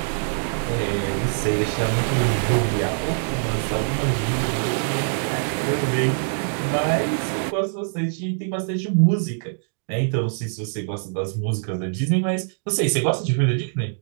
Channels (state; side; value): silent; left; digital silence